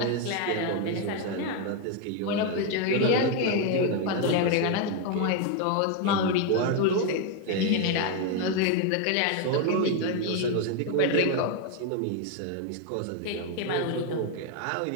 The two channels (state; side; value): different; both; correlation 0.01